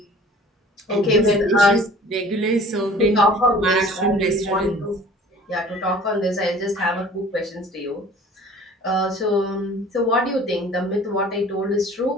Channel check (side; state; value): both; normal; correlation 0.48